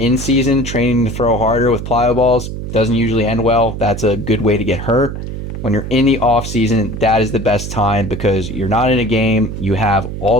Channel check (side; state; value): right; noise; hum, 7 dB below the sound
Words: season training to throw harder with plyo balls, doesn't usually end well. That's a good way to get hurt. When you're in the off season, that is the best time because you're not in a game. You have all